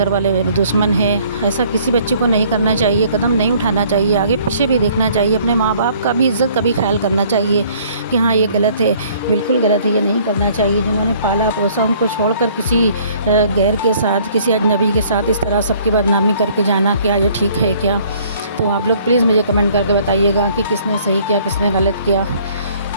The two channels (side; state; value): both; inverted; correlation -0.58